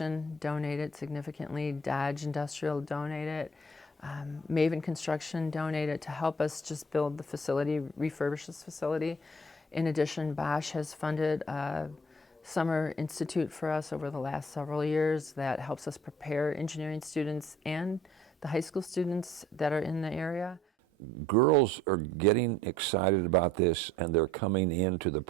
donated significantly. Dodge Industrial donated. Maven Construction donated to help us just build the facility, refurbish this facility. In addition, Bosch has funded a summer institute for us over the last several years that helps us prepare engineering students and the high school students that are in the area. Girls are getting excited about this and they're coming into the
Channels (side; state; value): both; normal; correlation 0.57